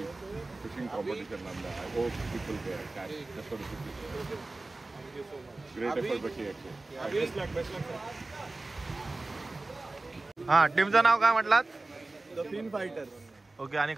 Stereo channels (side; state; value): left; quieter; 3.1 dB